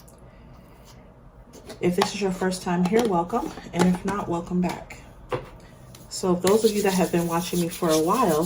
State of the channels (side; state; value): both; identical; correlation 1.00